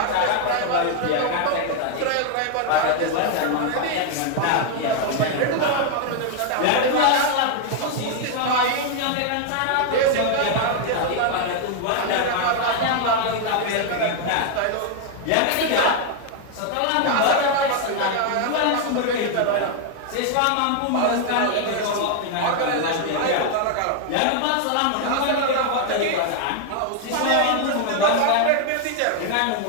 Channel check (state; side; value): different; both; correlation 0.00